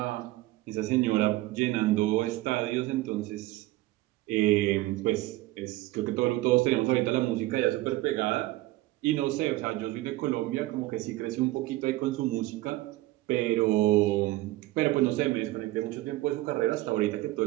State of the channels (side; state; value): left; quieter; 18.0 dB